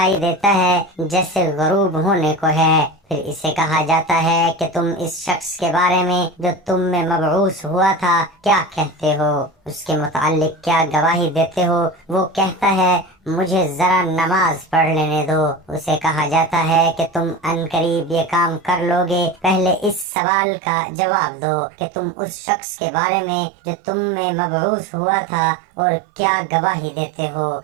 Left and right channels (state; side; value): drops out; left; at 20.1 s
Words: دیتا ہے جیسے غروب ہونے کو ہے، پھر اسے کہا جاتا ہے کہ تم اس شخص کے بارے میں جو تم میں مبعوث ہوا تھا کیا کہتے ہو، اس کے متعلق کیا گواہی دیتے ہو؟ وہ کہتا ہے مجھے ذرا نماز پڑھ لینے دو۔ اسے کہا جاتا ہے کہ تم عنقریب یہ کام کر لو گے، پہلے اس سوال کا جواب دو کہ تم اس شخص کے بارے میں جو تم میں مبعوث ہوا تھا اور کیا گواہی دیتے ہو؟